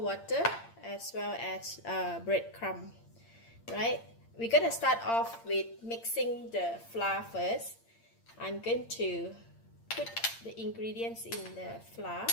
water as well as breadcrumb. Right, we're gonna start off with mixing the flour first. I'm going to put the ingredients in the flour.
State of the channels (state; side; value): late; right; 8.8 ms